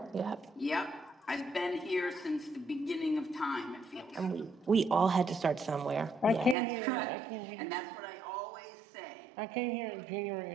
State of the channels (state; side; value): drops out; left; at 6.6 s